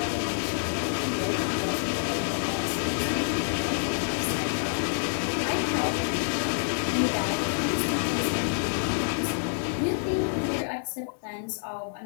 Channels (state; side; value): silent; right; digital silence